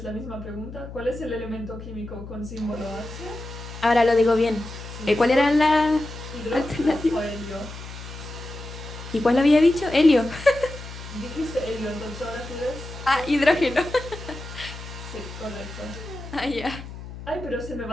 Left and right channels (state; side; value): noise; left; hum, 12 dB below the sound